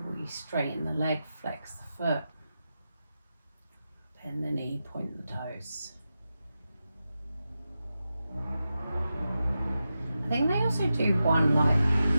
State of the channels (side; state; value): both; inverted; correlation -0.91